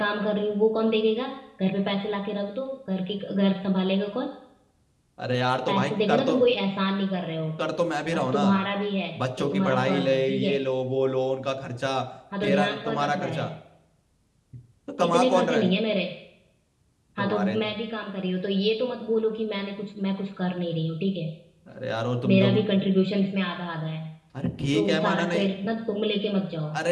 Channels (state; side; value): identical; both; correlation 1.00